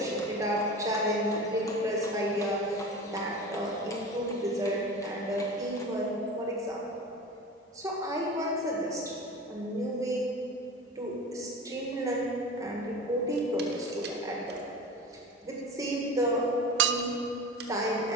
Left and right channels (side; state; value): both; normal; correlation 0.32